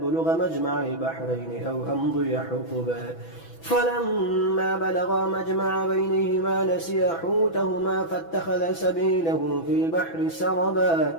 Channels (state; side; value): late; right; 6.0 ms